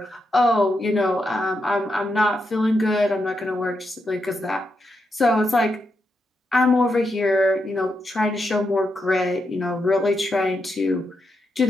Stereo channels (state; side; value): normal; both; correlation 0.84